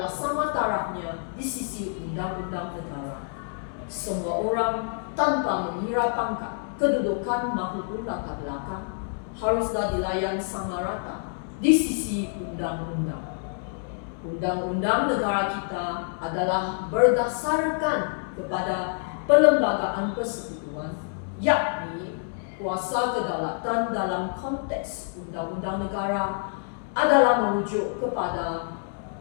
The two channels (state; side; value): silent; right; digital silence